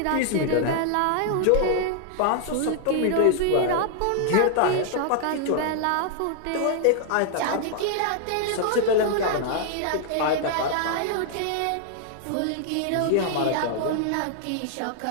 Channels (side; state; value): both; different; correlation -0.01